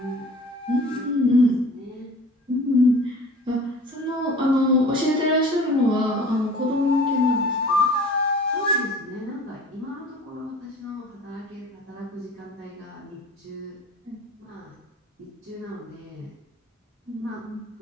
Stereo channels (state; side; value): normal; both; correlation 0.44